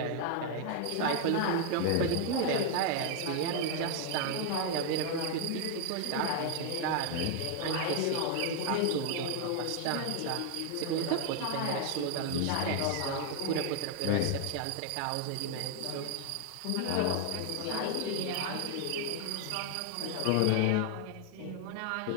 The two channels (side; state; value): both; different; correlation 0.01